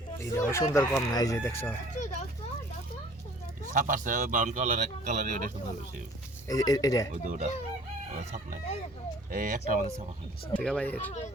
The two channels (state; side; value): normal; both; correlation 0.52